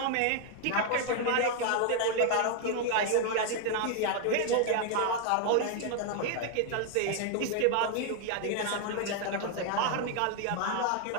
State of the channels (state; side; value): different; both; correlation 0.00